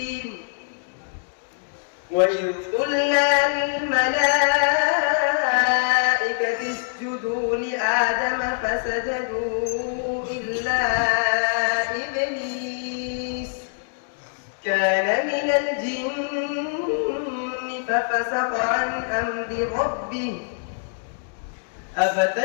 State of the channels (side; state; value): right; silent; digital silence